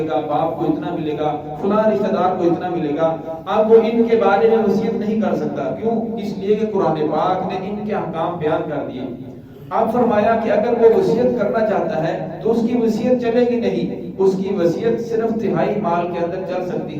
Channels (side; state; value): both; identical; correlation 1.00